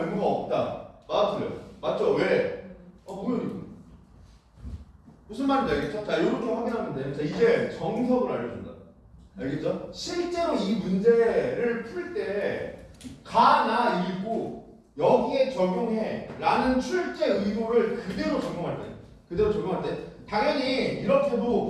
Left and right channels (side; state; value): both; identical; correlation 1.00